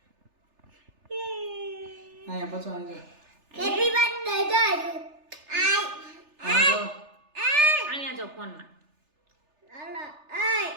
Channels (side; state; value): left; late; 3.4 ms